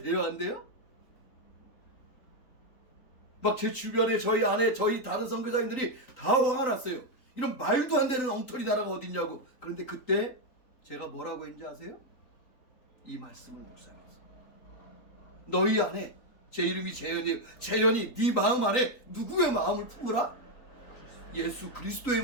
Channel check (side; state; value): right; late; 3.9 ms